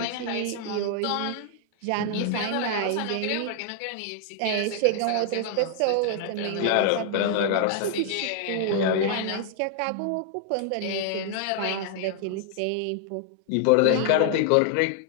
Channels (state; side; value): different; both; correlation 0.00